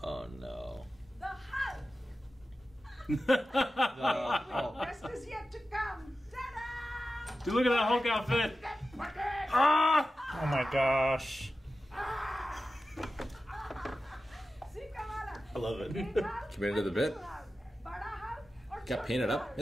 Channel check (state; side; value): normal; both; correlation 0.93